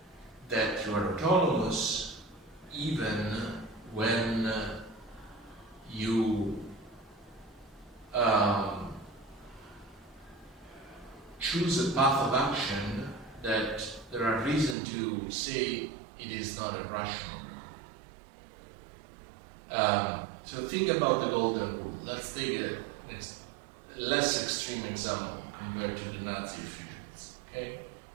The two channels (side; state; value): left; drops out; at 14.8 s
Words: that you are autonomous even when you choose a path of action that there are reasons to say it is not irrational. So think about the golden rule. Let's take a less extreme example compared to the Nazi officials. Okay?